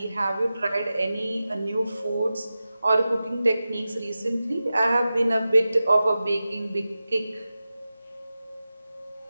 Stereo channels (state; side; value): inverted; both; correlation -0.94